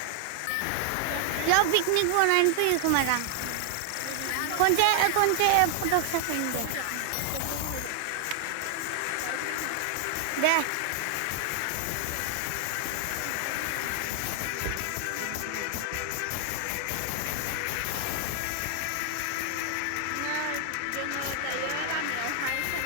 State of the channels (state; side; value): different; both; correlation 0.00